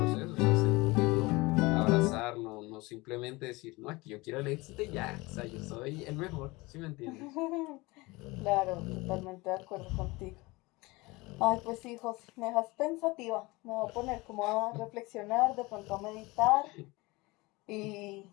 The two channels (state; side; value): quieter; right; 23.1 dB